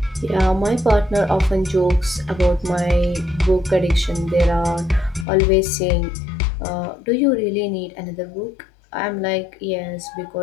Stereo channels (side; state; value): right; drops out; at 5.2 s